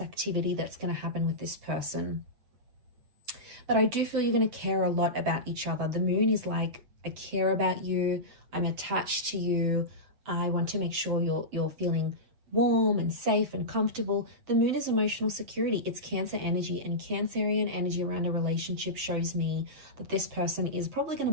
activity that's going to happen with this person. But I do feel you're going to care a lot about each other. The Moon is like, I care about you. I'm attached to you. I want to make sure you're feeling warm and safe and comfortable. The Moon is emotional security. It's Cancer energy, and Cancerian energy around a relationship shows me that this person is probably going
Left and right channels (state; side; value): late; left; 8.0 ms